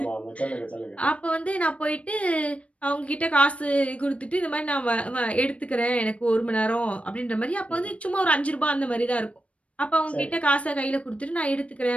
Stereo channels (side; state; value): right; late; 0.063 ms